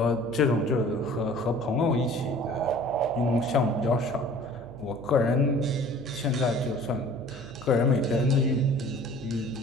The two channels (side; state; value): right; noise; hum, 17 dB below the sound